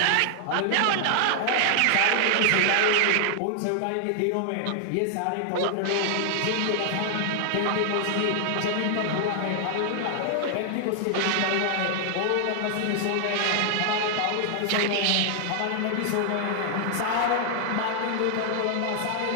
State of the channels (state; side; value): different; both; correlation 0.00